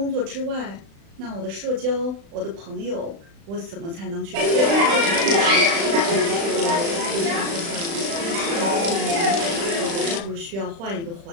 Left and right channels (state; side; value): late; left; 36 ms